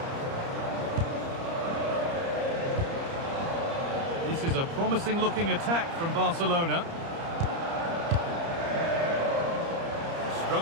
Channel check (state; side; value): late; left; 30 ms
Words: This is a promising looking attack from Barcelona.